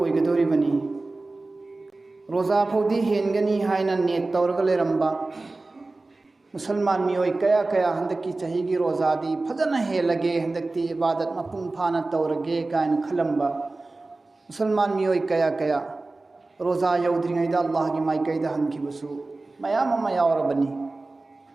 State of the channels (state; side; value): quieter; left; 3.2 dB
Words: ओइगदोरिबनी। रोजा फौदी हेनगनी हाइना नेट तौरग लेरंबा मुसलमान मियोय कया कया हंदकी चहीगी रोजादी फजना हेलगे हंदकती इबादत मपुंग फाना तौरगे कायन खलंबा मुसलमान मियोय कया कया रोजा यौद्रिङैदा अल्लाह की माइकैदा हनखिबसु मयाम अमा यावरबनी।